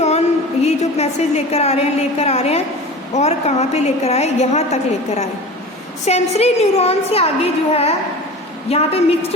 ये जो मैसेज लेकर आ रहे हैं और कहाँ पे लेकर आए, यहाँ तक लेकर आए। सेंसरी न्यूरॉन से आगे जो है यहाँ पे मिक्स्ड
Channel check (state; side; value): normal; both; correlation 0.35